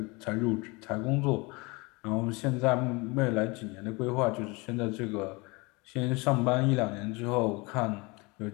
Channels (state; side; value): quieter; right; 26.5 dB